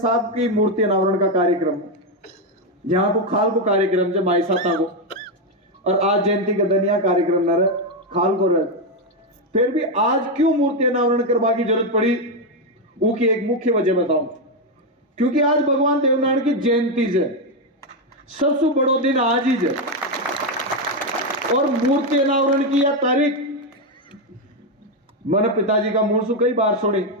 की मूर्ति अनावरण का कार्यक्रम, यहाँ को खाल को कार्यक्रम जब माई साता को, और आज जयंती का दनिया कार्यक्रम न रहे खाल को रहे, फिर भी आज क्यों मूर्ति अनावरण करवा की जरूरत पड़ी, वो की एक मुख्य वजह बताऊं। क्योंकि आज भगवान देवनारायण की जयंती है, सबसे बड़ो दिन आज ही है, और मूर्ति अनावरण की यह तारीख मैंने पिताजी का मुंह से कई बार सुनी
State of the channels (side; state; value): both; normal; correlation 0.06